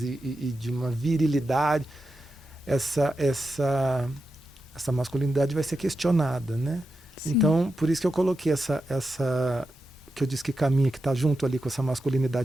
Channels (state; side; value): normal; both; correlation 0.89